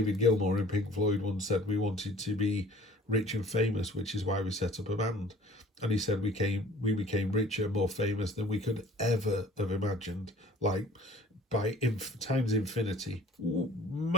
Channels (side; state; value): both; normal; correlation 0.50